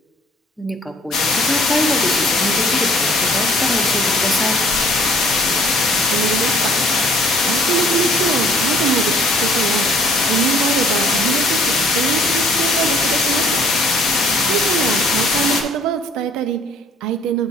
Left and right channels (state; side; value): normal; both; correlation 0.57